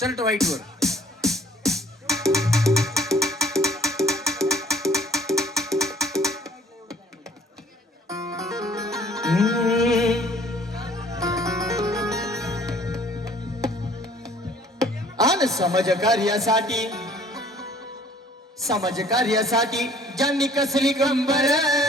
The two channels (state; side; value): normal; both; correlation 0.56